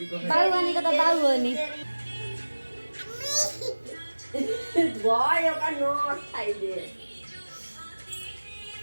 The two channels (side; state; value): both; inverted; correlation -1.00